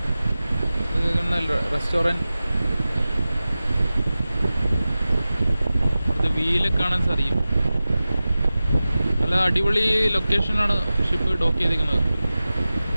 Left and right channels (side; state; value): both; inverted; correlation -0.96